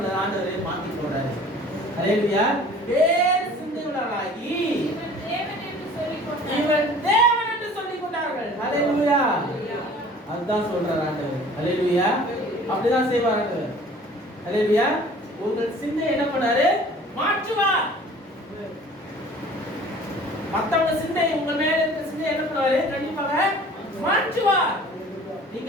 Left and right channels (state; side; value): normal; both; correlation 0.48